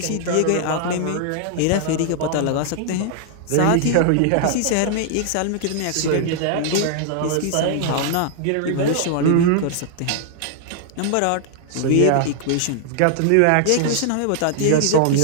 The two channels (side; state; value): both; different; correlation -0.01